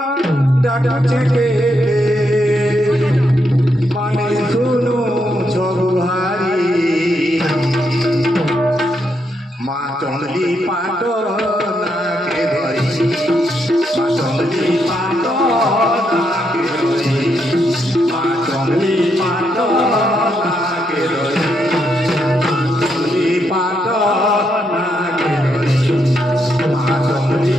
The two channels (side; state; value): both; normal; correlation 0.79